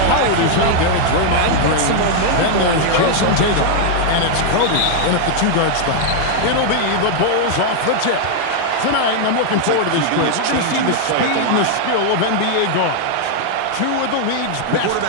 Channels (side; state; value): both; different; correlation 0.00